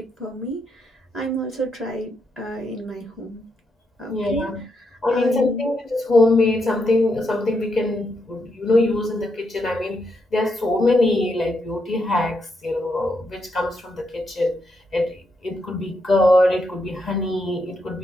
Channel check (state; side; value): normal; both; correlation 0.80